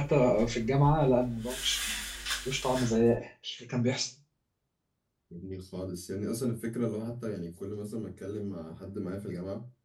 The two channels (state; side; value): identical; both; correlation 1.00